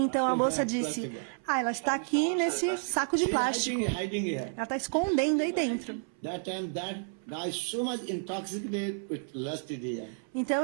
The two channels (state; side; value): silent; left; 57 dB below the other